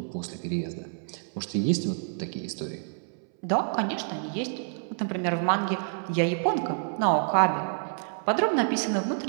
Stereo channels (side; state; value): left; silent; 59 dB below the other